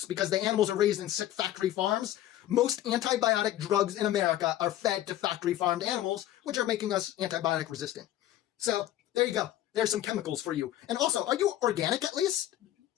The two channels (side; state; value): right; quieter; 13.3 dB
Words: because the animals are raised in sick factory farms. Most antibiotic drugs in America are fed to factory farmed animals, which are making us antibiotic resistant. So there you go. There's some chemicals for you. And also, are you organic at least?